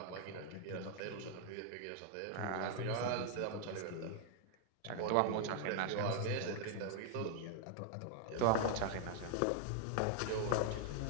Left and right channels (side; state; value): both; different; correlation 0.00